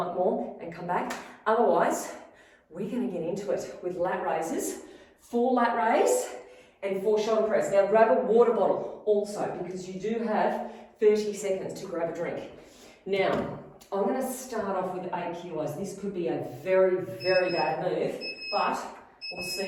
up more and come back. Otherwise, we're going to get into it with lat raises. 4 lat raise and 4 shoulder press. Now grab a water bottle also because you do have 30 seconds to grab a drink. Now, I'm going to start off with 8 kilos. This could be a very, very bad move, but we'll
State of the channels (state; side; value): identical; both; correlation 1.00